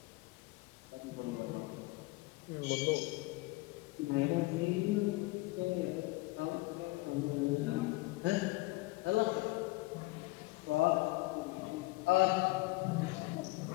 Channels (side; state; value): right; quieter; 21.7 dB